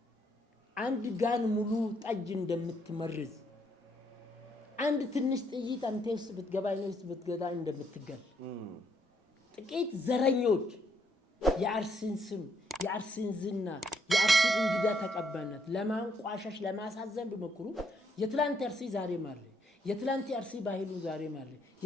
አንድ ጋን ሙሉ ጠጅ እንደምትመርዝ አንድ ትንሽ ጥይት አንተ ውስጥ ብትገባ ነው ውስጥ ብትገዳ እንደምትገል ጥቂት ዘረኞች የአርሲን ስም የአርሲን ዝና የአርሲን እንግዳ ተቀባይነት ለማንቋሸሽ ለማሳዘን ቢሞክሩ የትላንት አርሲ ዛሬ ማለ የትላንት አርሲ ባህሉ ዛሬ ማለ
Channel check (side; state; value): both; normal; correlation 0.72